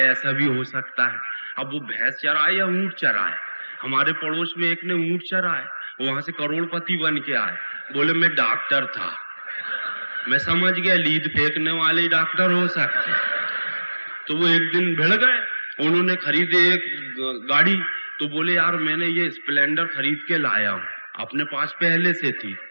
ऐसा भी हो सकता है। अब वो भैंस चराए या ऊंट चराए। हमारे पड़ोस में एक ने ऊंट चराए, वहां से करोड़पति बन के आए। बोले मैं डॉक्टर था। मैं समझ गया लीद फेंकने वाले डॉक्टर हो सकते। तो वो एक दिन भिड़ गए, उन्होंने खरीदे एक गाड़ी। तो बोले यार मैंने ये स्प्लेंडर खरीद के लाया हूं, अपने पास पहले से थी।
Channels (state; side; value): inverted; both; correlation -1.00